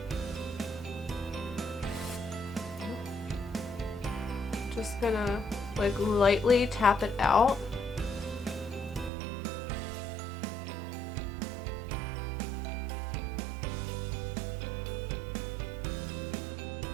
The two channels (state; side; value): drops out; left; at 9.1 s